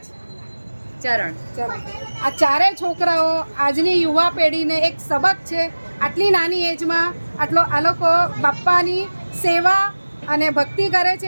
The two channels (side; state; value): both; inverted; correlation -1.00